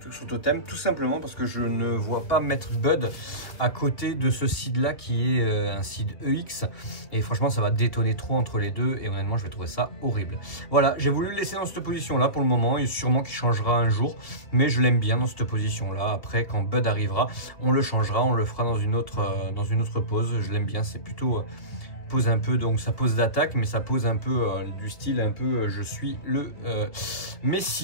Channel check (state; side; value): late; right; 2.4 ms